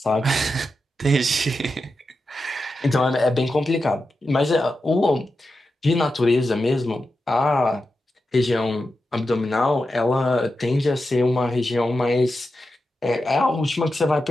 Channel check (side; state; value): both; normal; correlation 0.89